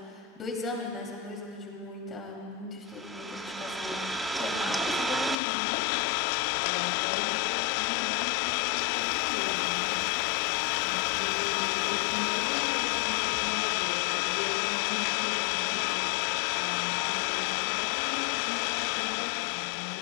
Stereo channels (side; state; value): right; drops out; at 5.4 s